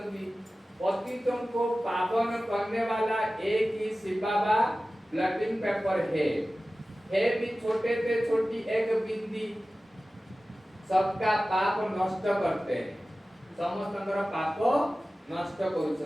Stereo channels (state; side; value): normal; both; correlation 0.96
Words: पतितों को पावन करने वाला एक ही शिव बाबा ब्लटिंग पेपर है भी छोटे से छोटी एक बिंदी सबका पाप नष्ट करते हैं। समस्तंकर पाप नष्ट